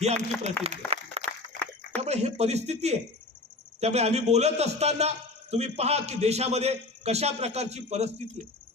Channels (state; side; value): quieter; right; 3.1 dB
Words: ही आमची प्रतिज्ञा आहे. त्यामुळे हे परिस्थिती आहे. त्यामुळे आम्ही बोलत असताना तुम्ही पहा की देशामध्ये कशा प्रकारची परिस्थिती आहे.